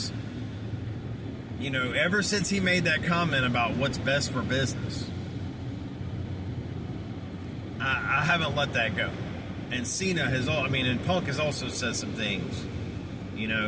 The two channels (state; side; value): identical; both; correlation 1.00